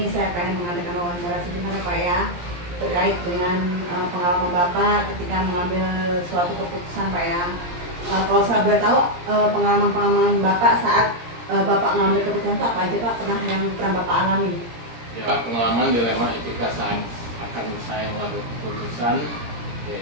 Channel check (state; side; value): late; left; 17 ms